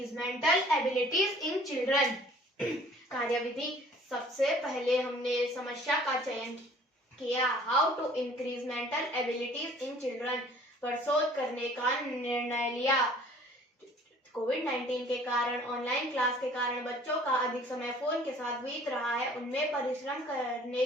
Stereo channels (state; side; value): normal; both; correlation 0.53